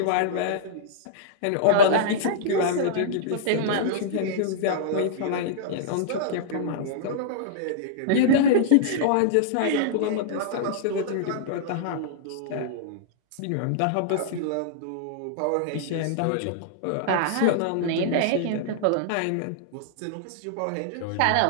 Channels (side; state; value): both; different; correlation -0.02